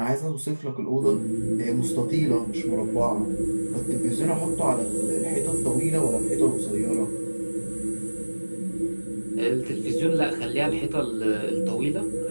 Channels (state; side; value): inverted; both; correlation -1.00